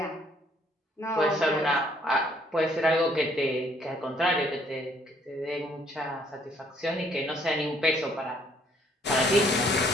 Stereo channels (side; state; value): both; normal; correlation 0.65